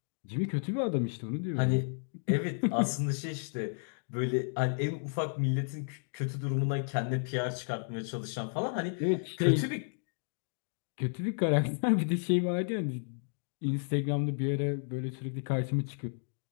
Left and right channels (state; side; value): silent; right; digital silence